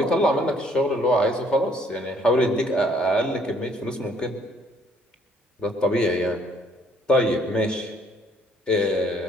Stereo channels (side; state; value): both; normal; correlation 0.62